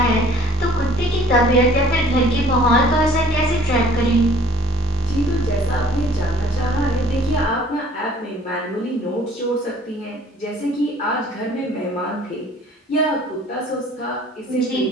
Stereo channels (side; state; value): both; normal; correlation 0.56